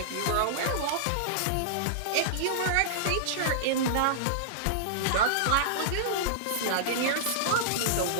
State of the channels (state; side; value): different; both; correlation -0.02